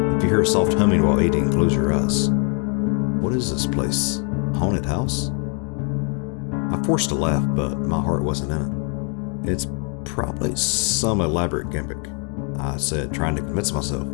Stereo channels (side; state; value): right; quieter; 38.6 dB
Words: "If you hear a soft humming while eating, close your eyes." What is this place? Haunted house? I forced a laugh, but my heart wasn't in it. "It's probably some elaborate gimmick," I said, trying to convince myself.